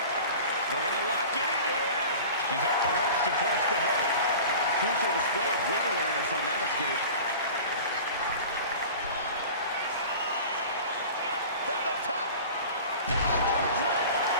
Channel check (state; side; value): inverted; both; correlation -0.39